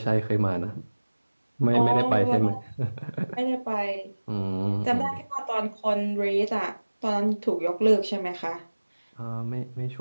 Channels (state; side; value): inverted; both; correlation -1.00